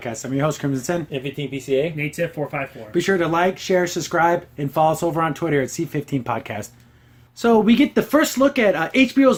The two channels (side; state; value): both; identical; correlation 1.00